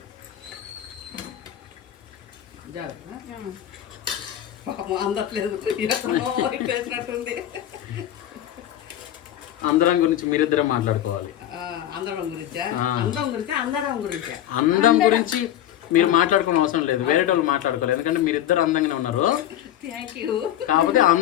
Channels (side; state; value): right; quieter; 11.9 dB